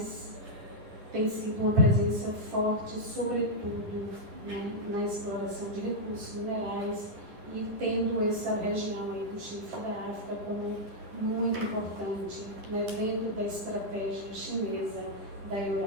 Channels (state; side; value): late; left; 10 ms